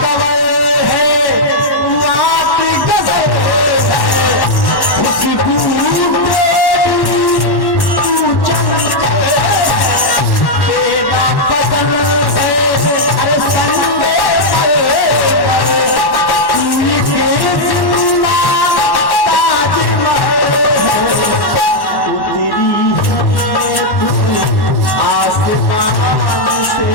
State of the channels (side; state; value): right; late; 1.1 ms